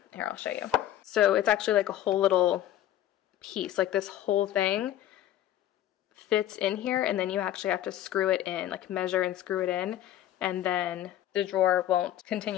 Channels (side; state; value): right; quieter; 12.3 dB